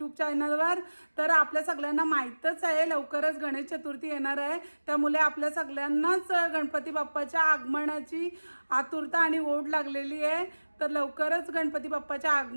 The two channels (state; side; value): inverted; both; correlation -1.00